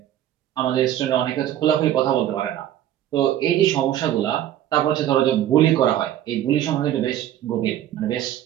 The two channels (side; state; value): left; quieter; 11.9 dB